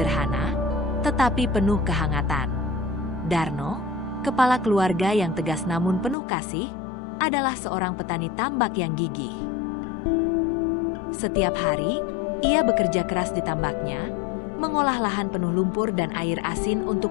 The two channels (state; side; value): drops out; right; at 6.2 s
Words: tetapi penuh kehangatan. Darno, kepala keluarga yang tegas namun penuh kasih, adalah seorang petani tambak yang gigih. Setiap hari, ia bekerja keras di tambaknya, mengolah lahan penuh lumpur dan air asin